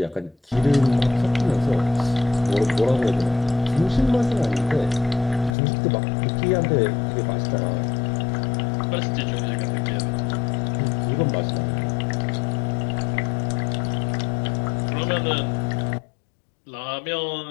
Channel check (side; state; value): right; drops out; at 5.6 s